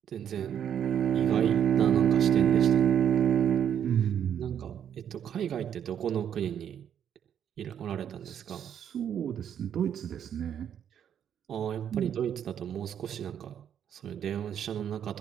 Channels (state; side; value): quieter; left; 9.1 dB